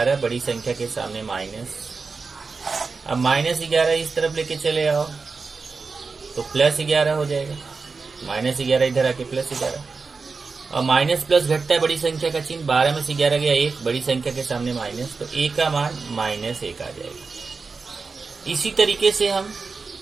बड़ी संख्या के सामने माइनस। अब -11 इस तरफ लेके चले आओ तो +11 हो जाएगा। -11 इधर आके +11 और माइनस प्लस घटता है बड़ी संख्या का चिन्ह। 12 में से 11 गया 1, बड़ी संख्या के सामने माइनस, तो a का मान -1 आ जाएगा। इसी तरीके से हम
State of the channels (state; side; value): quieter; left; 4.5 dB